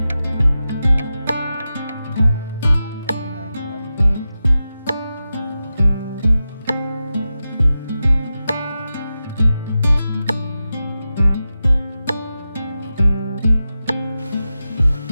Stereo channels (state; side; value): inverted; both; correlation -0.92